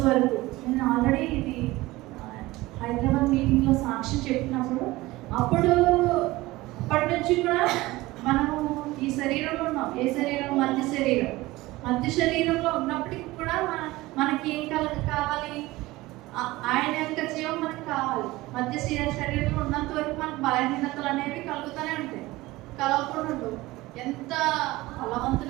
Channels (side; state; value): left; quieter; 19.3 dB